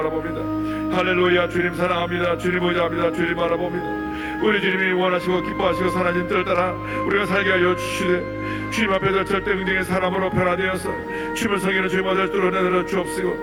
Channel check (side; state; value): both; identical; correlation 1.00